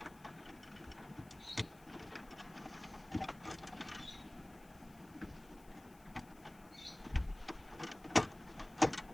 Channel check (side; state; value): left; noise; hiss, 24 dB below the sound